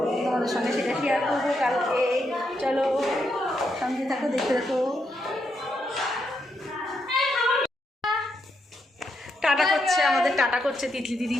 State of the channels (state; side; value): normal; both; correlation 0.80